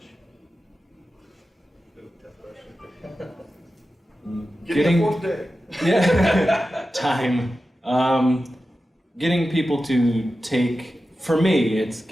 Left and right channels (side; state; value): both; normal; correlation 0.93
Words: Getting a 4th day. Yeah. Time. Getting people to for me, it's